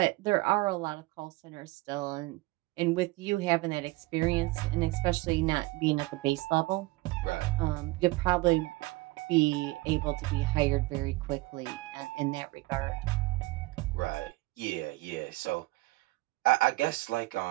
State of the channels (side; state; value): left; quieter; 21.6 dB